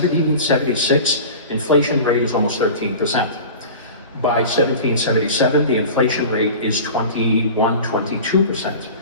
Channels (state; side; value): inverted; both; correlation -0.36